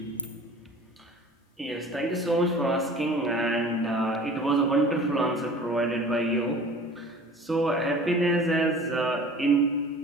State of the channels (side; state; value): both; normal; correlation 0.44